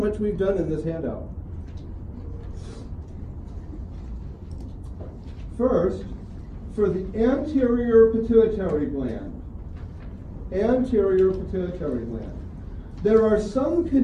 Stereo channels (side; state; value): both; identical; correlation 1.00